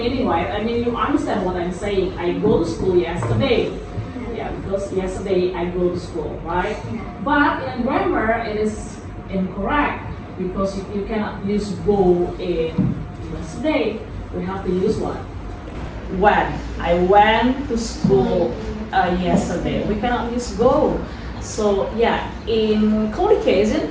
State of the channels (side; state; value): both; identical; correlation 1.00